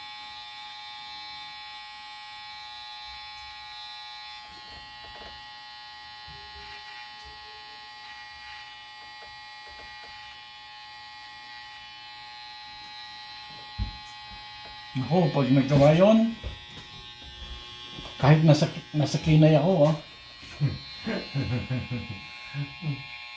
Ako, pag nagawa yun, kahit nasa kinay ako,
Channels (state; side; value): identical; both; correlation 1.00